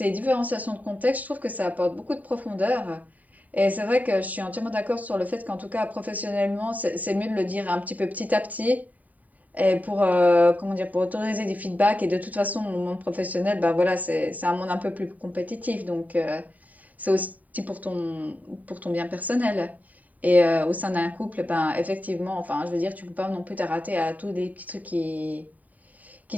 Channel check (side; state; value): left; late; 0.074 ms